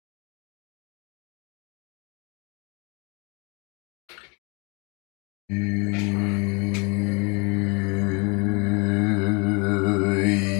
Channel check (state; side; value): quieter; right; 30.3 dB